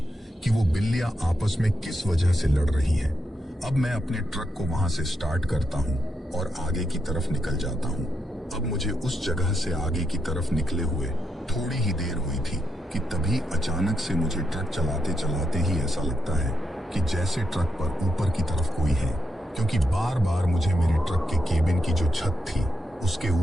कि वो बिल्लियां आपस में किस वजह से लड़ रही हैं। अब मैं अपने ट्रक को वहां से स्टार्ट करता हूं और आगे की तरफ निकल जाता हूं। अब मुझे उस जगह से आगे की तरफ निकले हुए थोड़ी ही देर हुई थी कि तभी अचानक से मुझे ट्रक चलाते चलाते ही ऐसा लगता है कि जैसे ट्रक पर ऊपर की तरफ कोई है, क्योंकि बार बार मुझे मेरे ट्रक के केबिन की जो छत थी उसके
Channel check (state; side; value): normal; both; correlation 0.83